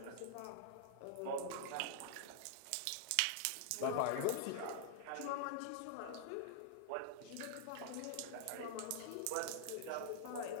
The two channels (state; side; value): different; both; correlation -0.01